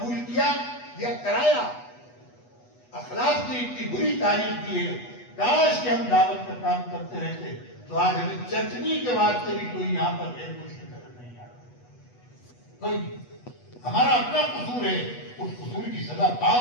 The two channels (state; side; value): late; right; 8.2 ms